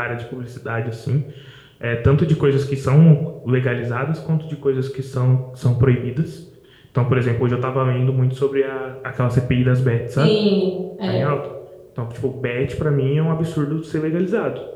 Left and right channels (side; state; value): both; identical; correlation 1.00